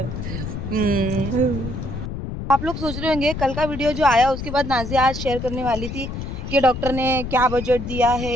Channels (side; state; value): left; noise; rumble, 6 dB below the sound